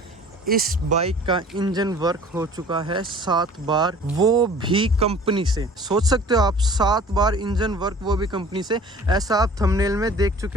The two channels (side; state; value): both; normal; correlation 0.47